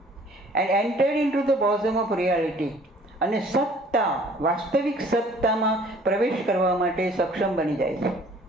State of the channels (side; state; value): both; normal; correlation 0.54